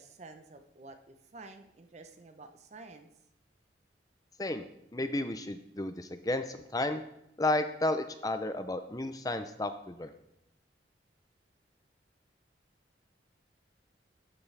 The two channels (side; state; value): both; normal; correlation 0.52